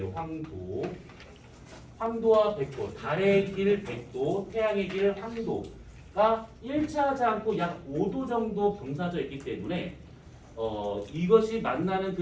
황도와 백도, 달의 길 백도, 태양의 길 황도가 일치하지 않고 약 5도 정도 경사져 있기 때문에 이것이 만나는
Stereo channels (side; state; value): both; identical; correlation 1.00